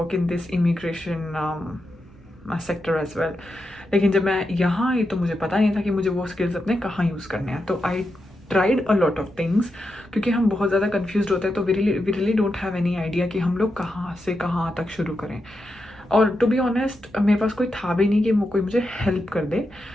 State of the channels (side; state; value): both; normal; correlation 0.87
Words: in this immigration sector as well. लेकिन जब मैं यहाँ आई तो मुझे पता नहीं था कि मुझे वो स्किल्स अपने कहाँ यूज़ करने हैं। तो I tried a lot of things, क्योंकि हम बहुत ज़्यादा कन्फ्यूज होते हैं। तो we really don't have any idea कि हम लोग कहाँ से कहाँ तक शुरू करें। और टू बी ऑनेस्ट मेरे पास कोई था भी नहीं कि कोई मुझे हेल्प कर दे।